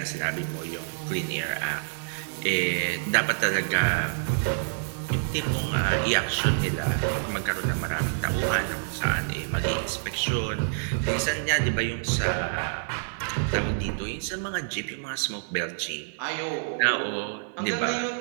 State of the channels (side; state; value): left; silent; digital silence